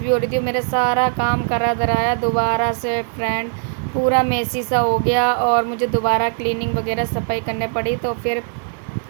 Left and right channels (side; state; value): left; silent; digital silence